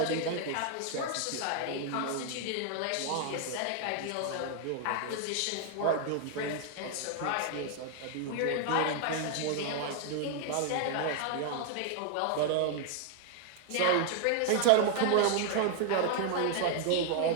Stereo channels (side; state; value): both; different; correlation 0.00